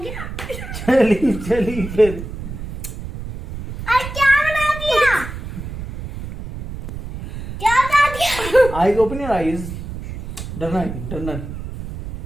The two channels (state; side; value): noise; right; rumble, 9 dB below the sound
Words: चली चली फिर। अरे क्या बना दिया? क्या बना दिया? Eyes open your eyes. डरना नहीं, डरना नहीं।